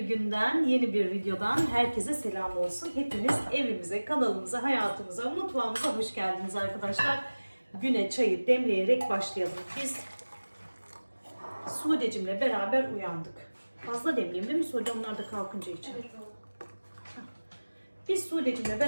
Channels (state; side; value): inverted; both; correlation -1.00